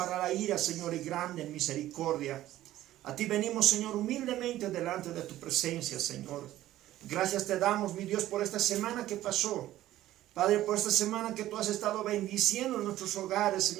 la ira, Señor, y grande en misericordia. A ti venimos, Señor, humildemente delante de tu presencia, Señor. Gracias te damos, mi Dios, por esta semana que pasó. Padre, por esta semana que tú has estado bendiciendo en nuestros hogares,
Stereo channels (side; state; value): left; quieter; 14.3 dB